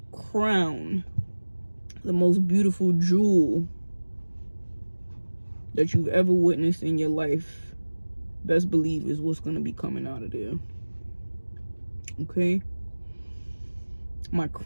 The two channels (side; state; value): both; inverted; correlation -1.00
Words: crown, the most beautiful jewel that you've ever witnessed in your life, best believe is what's going to be coming out of there. Okay, my